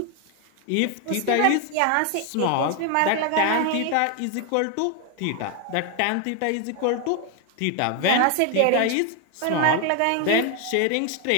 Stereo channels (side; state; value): both; different; correlation 0.01